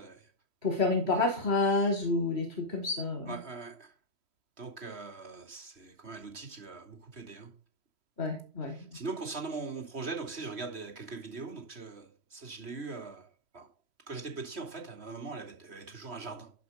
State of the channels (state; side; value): late; left; 3.1 ms